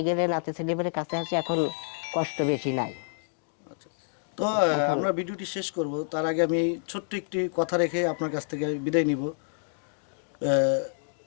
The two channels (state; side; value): silent; right; digital silence